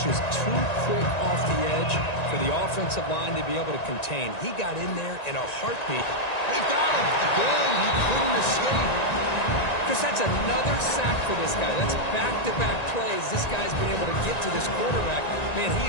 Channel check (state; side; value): late; right; 1.9 ms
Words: just too quick off the edge for the offensive line to be able to contain. He got in there in a heartbeat. They've got him. Again, he couldn't escape. Because that's another sack for this guy. That's back-to-back plays. This guy's been able to get to this quarterback. Man,